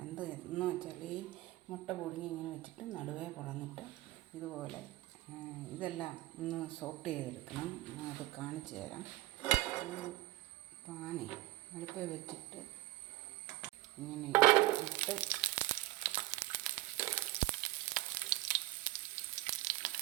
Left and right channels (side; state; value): left; quieter; 18.1 dB